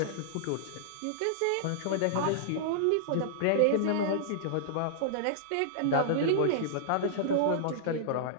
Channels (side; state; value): both; different; correlation -0.02